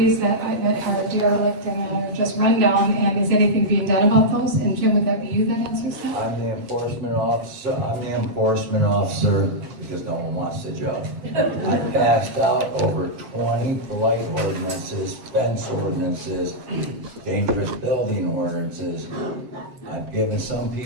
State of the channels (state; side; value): late; left; 8.7 ms